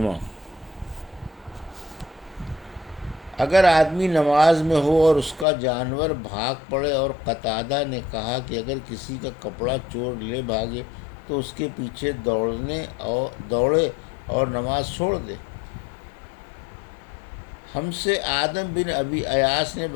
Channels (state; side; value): drops out; right; at 5.5 s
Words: اگر آدمی نماز میں ہو اور اس کا جانور بھاگ پڑے، اور قتادہ نے کہا کہ اگر کسی کا کپڑا چور لے بھاگے تو اس کے پیچھے دوڑے اور نماز چھوڑ دے۔ ہم سے آدم بن ابی ایاس نے